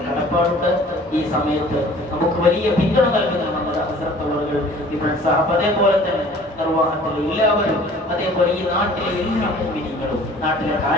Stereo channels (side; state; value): both; normal; correlation 0.50